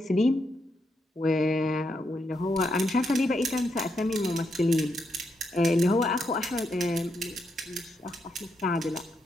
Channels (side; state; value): both; normal; correlation 0.81